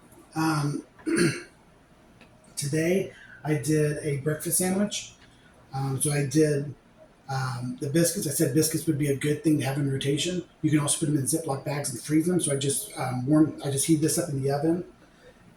Um, Today I did a breakfast sandwich. So I did the biscuits. I said biscuits would be a good thing to have in rotation. You can also put them in Ziploc bags and freeze them. So I just I just heat this up in the oven.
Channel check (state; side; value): identical; both; correlation 1.00